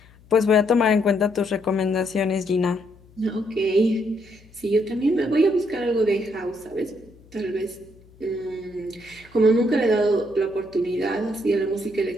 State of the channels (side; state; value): left; noise; hum, 26 dB below the sound